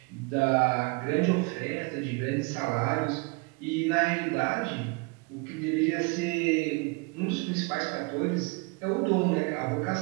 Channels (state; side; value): quieter; left; 29.3 dB